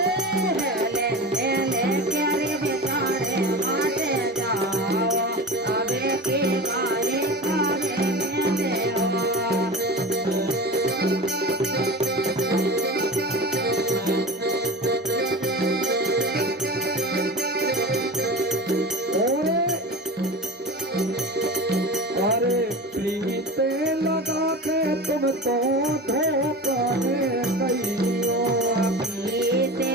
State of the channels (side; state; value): both; normal; correlation 0.30